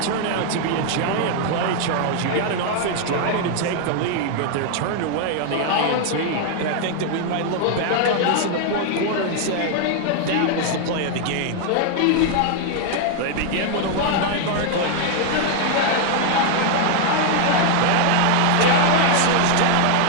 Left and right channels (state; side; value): different; both; correlation 0.00